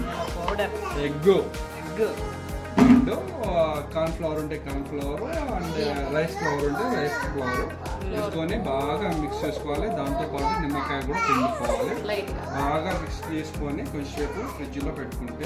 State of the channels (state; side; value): identical; both; correlation 1.00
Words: egg, and corn flour ఉంటే corn flour, and rice flour ఉంటే రైస్ ఫ్లవర్ తీసుకొని బాగా మిక్స్ చేసుకోవాలి. దాంతోపాటు నిమ్మకాయ కూడా పిండుకోవాలి. బాగా మిక్స్ చేసుకొని కొంచెంసేపు ఫ్రిడ్జ్లో